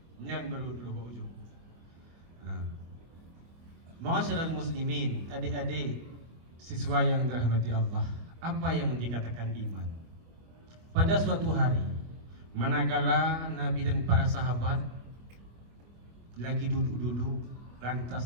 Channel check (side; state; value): left; late; 24 ms